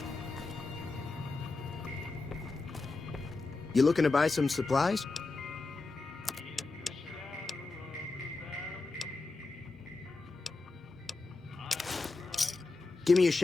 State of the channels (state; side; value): quieter; right; 3.7 dB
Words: You looking to buy some supplies? Give me a